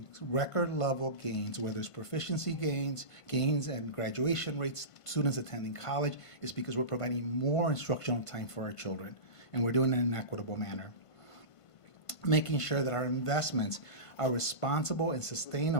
record level gains, whether it's proficiency gains and graduation rates, students attending college, is because we're providing more instructional time for our children, and we're doing it in an equitable manner. Making sure that our investments are responsible and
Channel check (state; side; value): late; right; 1.5 ms